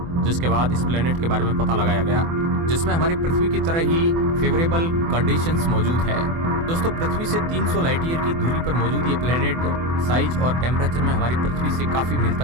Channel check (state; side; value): late; left; 24 ms